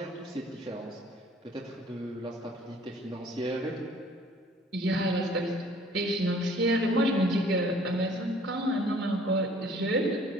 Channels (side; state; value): both; normal; correlation 0.55